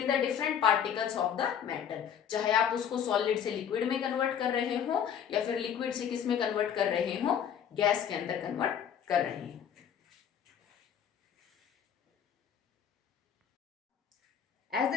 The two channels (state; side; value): quieter; right; 8.5 dB